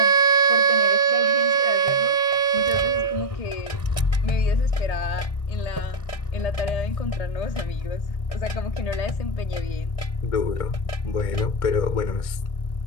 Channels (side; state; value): right; late; 1.6 ms